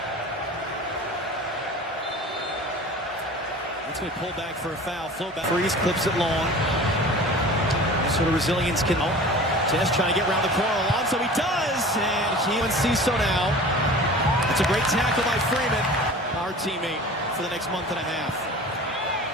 It's going to pull back for a foul. Flow back. Freeze clips it long. Sort of resilience can... Test trying to get around the corner. Alonso, he does! And he and Ciso now. It's a great tackle by Freeman, our teammate, for the next month and a half.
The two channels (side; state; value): both; normal; correlation 0.40